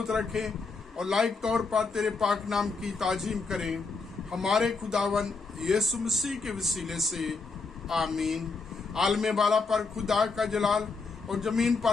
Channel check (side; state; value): right; quieter; 4.2 dB